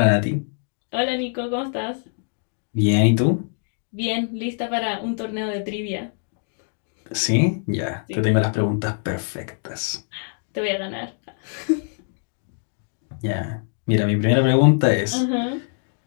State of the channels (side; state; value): right; silent; digital silence